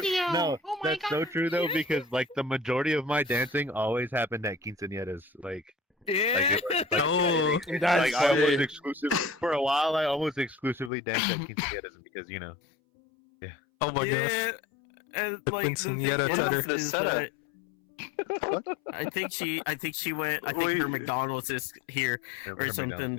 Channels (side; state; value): right; drops out; at 10.9 s